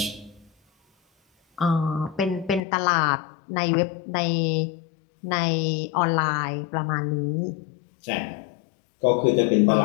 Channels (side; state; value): right; drops out; at 2.6 s